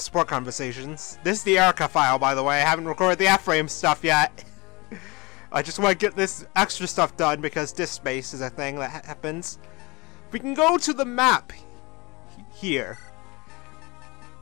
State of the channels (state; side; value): quieter; right; 25.3 dB